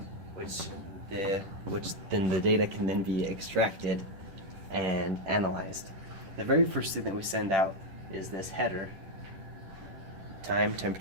which then the data can then be extracted and analyzed. The very first thing that we send out is this header: time,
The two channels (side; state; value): left; late; 10 ms